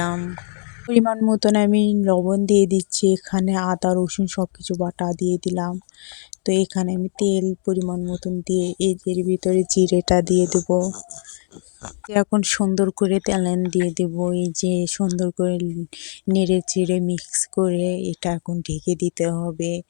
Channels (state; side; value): silent; right; digital silence